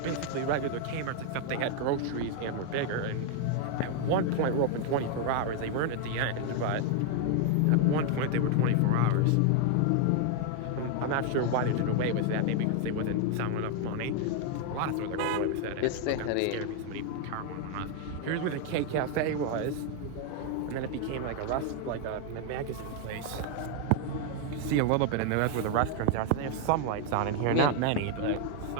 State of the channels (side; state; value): both; different; correlation 0.00